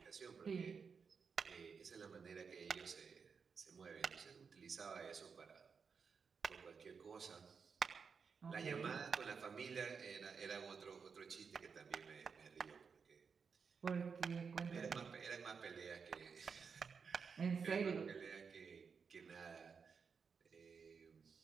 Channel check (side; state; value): left; quieter; 5.8 dB